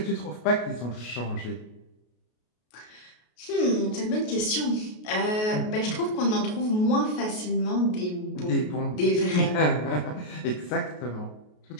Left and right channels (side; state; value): right; late; 33 ms